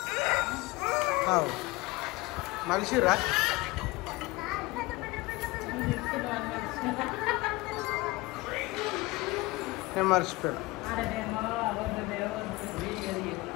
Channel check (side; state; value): right; quieter; 21.7 dB